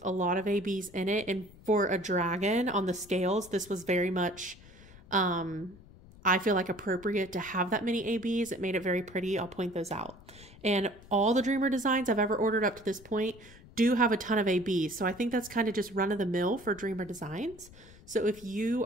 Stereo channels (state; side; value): noise; left; rumble, 21 dB below the sound